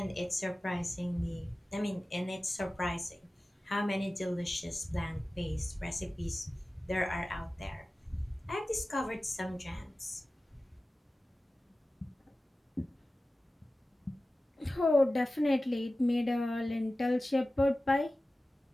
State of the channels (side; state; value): both; normal; correlation 0.96